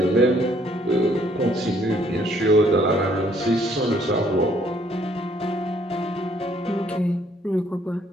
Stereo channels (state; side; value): normal; both; correlation 0.64